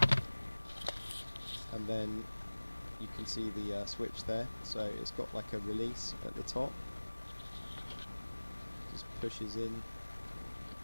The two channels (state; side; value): inverted; both; correlation -1.00